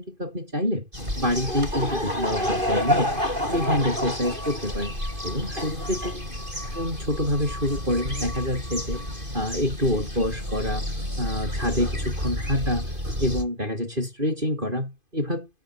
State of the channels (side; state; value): left; late; 2.5 ms